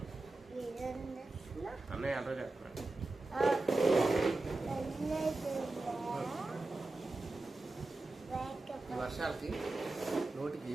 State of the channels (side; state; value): left; quieter; 3.1 dB